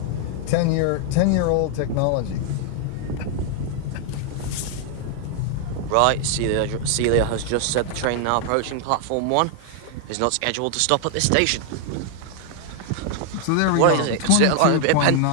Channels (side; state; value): both; different; correlation 0.00